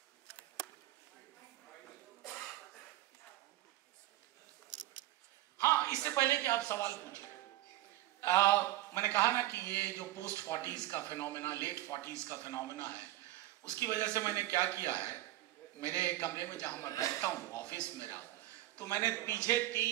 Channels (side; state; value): left; quieter; 16.1 dB